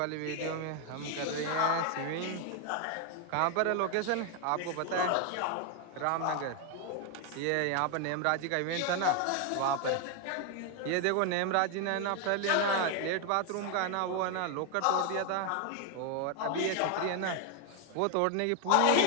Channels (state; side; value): different; both; correlation 0.01